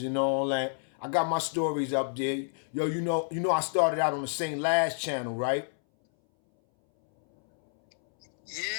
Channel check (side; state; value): right; silent; 59 dB below the other